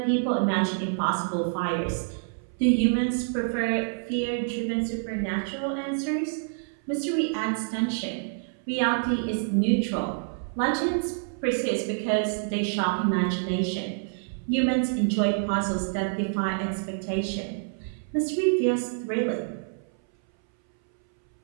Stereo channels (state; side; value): silent; left; 60 dB below the other